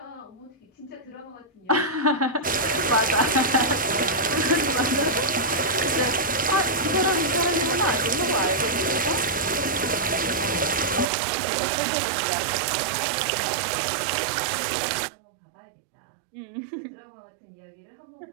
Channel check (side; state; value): left; drops out; at 11.1 s